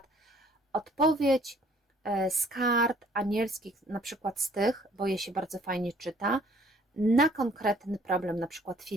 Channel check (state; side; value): normal; both; correlation 0.59